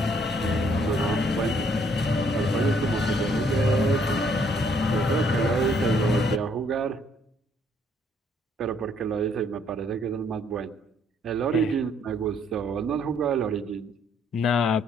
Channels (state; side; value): normal; both; correlation 0.66